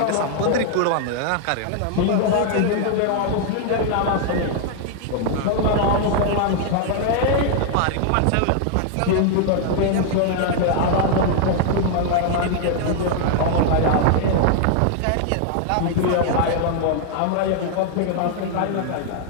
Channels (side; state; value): both; different; correlation 0.00